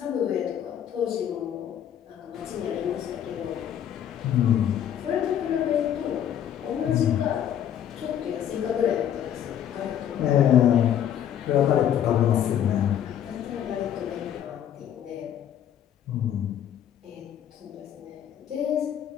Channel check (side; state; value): right; quieter; 10.0 dB